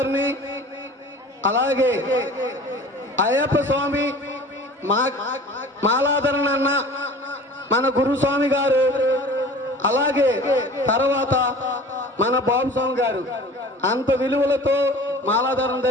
అలాగే అయ్యప్ప స్వామి మాలాధరణ అన్న మన గురుస్వామి గారు, అలాగే తర్వాత మన బాబు స్వామి గారు అంత విలువలతో మాలాధరణ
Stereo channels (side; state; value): both; normal; correlation 0.42